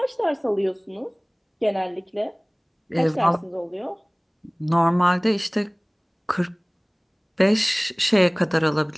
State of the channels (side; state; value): both; identical; correlation 1.00